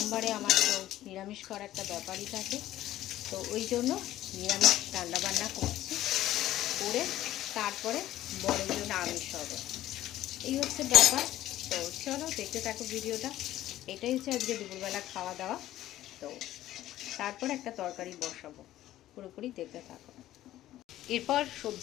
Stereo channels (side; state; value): right; quieter; 14.0 dB